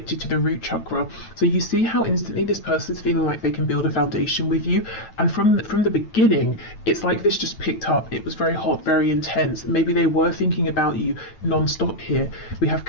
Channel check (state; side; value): late; right; 9.1 ms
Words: to the root chakra. So you see how instantly this person's feeling like they can build a foundation with you, and from the beginning, it's like this just picked up. It was very hot, very intense. Maybe they were thinking about you non-stop here. We have